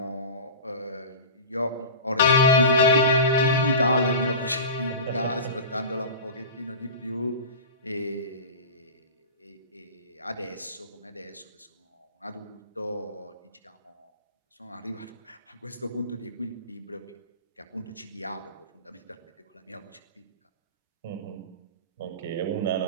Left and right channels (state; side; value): inverted; both; correlation -0.32